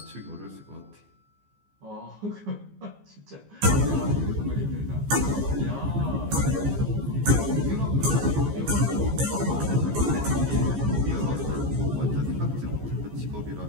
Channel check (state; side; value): late; left; 15 ms